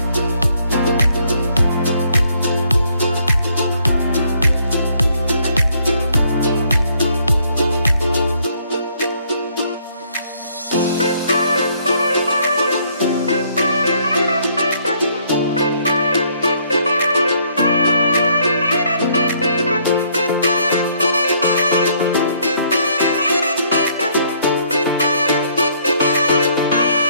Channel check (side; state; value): both; inverted; correlation -0.67